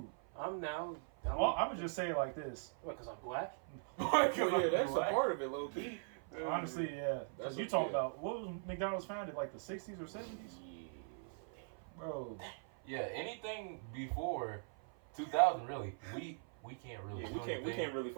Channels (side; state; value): left; silent; 51 dB below the other